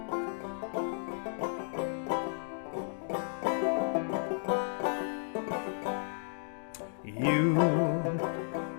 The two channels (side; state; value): right; silent; digital silence